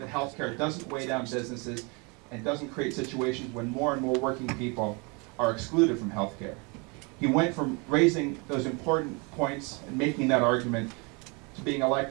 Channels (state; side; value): quieter; left; 30.6 dB